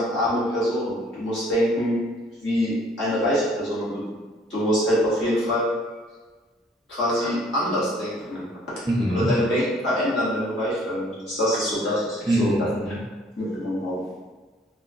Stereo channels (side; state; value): both; normal; correlation 0.58